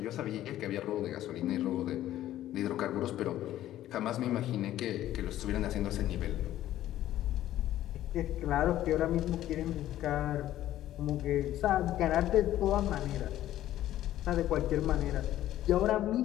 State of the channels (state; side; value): quieter; right; 13.3 dB